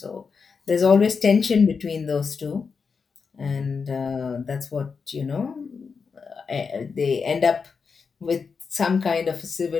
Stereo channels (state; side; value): quieter; right; 5.4 dB